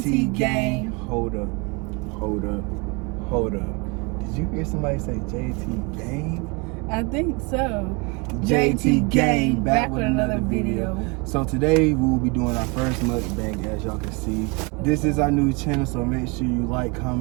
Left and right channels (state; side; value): quieter; left; 29.2 dB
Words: Gang. Hold up. Did you hear somebody say JT Gang? I think so. JT Gang, back with another video. So today we will be doing our first mukbang, as y'all can see. This is our new channel, so make sure you like,